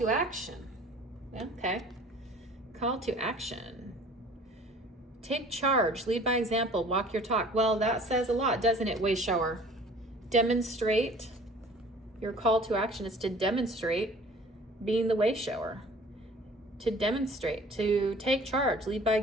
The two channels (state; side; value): normal; both; correlation 0.49